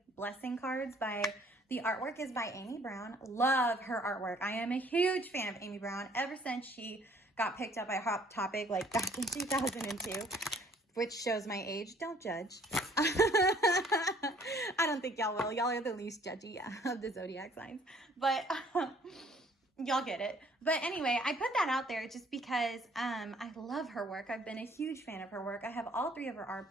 Blessing cards by, the artwork is by Amy Brown. Love her artwork. I am a huge fan of Amy Brown ever since she got picked up by Hot Topic like back in 2002, which shows my age. Don't judge. I don't think y'all will. Y'all are the least judgy of the zodiac signs, but y'all get it. But anyway, I put that out there just because I love her work. I've been a huge fan of her work. I have all 3 of her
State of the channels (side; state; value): both; normal; correlation 0.59